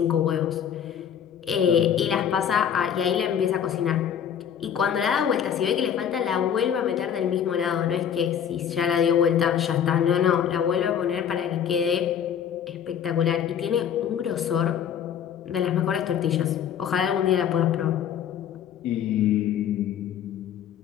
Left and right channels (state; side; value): quieter; right; 8.8 dB